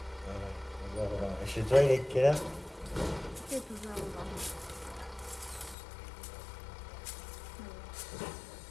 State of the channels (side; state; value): right; drops out; at 5.8 s